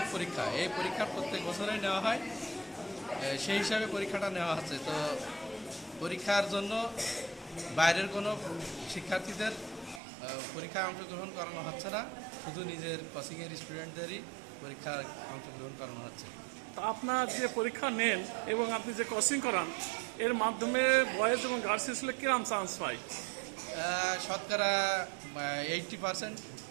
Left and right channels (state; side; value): drops out; left; at 10.0 s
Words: পরীক্ষা, এই পরীক্ষা প্রত্যেক বছরেই নেওয়া হয়, সেই হিসাবে পরীক্ষাটা নেওয়া হচ্ছে। তো পরীক্ষার জন্য বাইরের কোনো শিক্ষার্থীদের পরীক্ষায় অংশগ্রহণ করানো হচ্ছে না, শুধু নিজের কোচিংয়ের স্টুডেন্টদেরই পরীক্ষায় অংশগ্রহণ করানো হচ্ছে। তো আপনার যে পরীক্ষা নেন এবং আপনি যে কোচিং করান এর মাধ্যমে বয়েজ এবং গার্লস স্কুলে কিরম চান্স পায়? শতকরা 80%।